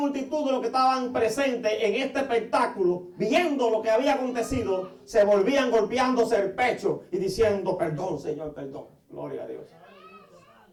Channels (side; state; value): both; identical; correlation 1.00